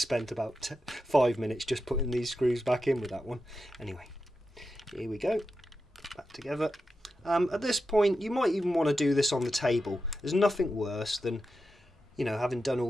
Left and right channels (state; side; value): normal; both; correlation 0.89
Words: about 5 minutes just putting these screws back in with that one. Anyway, here we go, back together. At this point, you might even want to do this on the table. There's nothing worse than, you know, having done